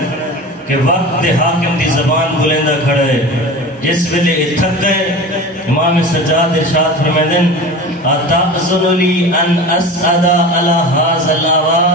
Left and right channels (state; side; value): normal; both; correlation 0.33